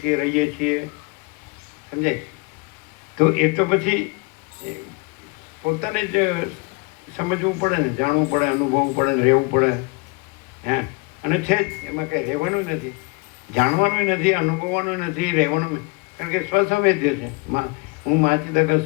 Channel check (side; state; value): right; quieter; 28.3 dB